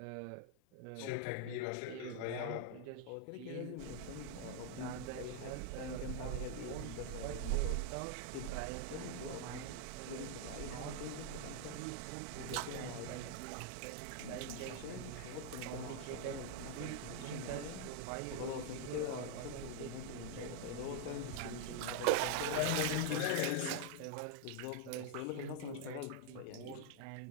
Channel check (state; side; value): different; both; correlation 0.00